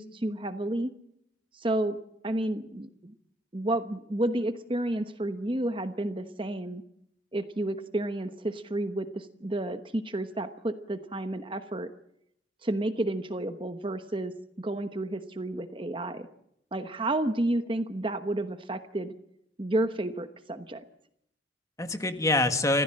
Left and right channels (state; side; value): normal; both; correlation 0.62